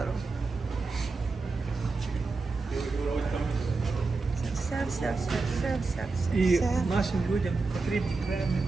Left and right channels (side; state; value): left; quieter; 3.9 dB